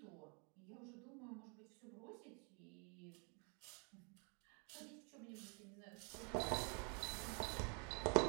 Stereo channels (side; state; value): left; quieter; 35.8 dB